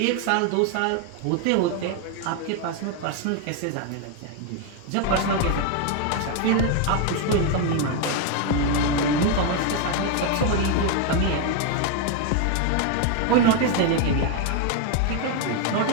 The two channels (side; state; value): both; different; correlation 0.01